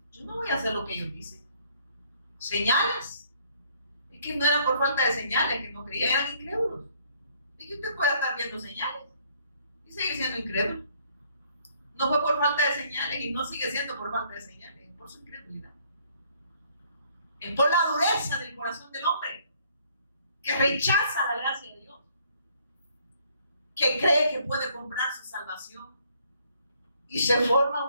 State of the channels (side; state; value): both; inverted; correlation -0.64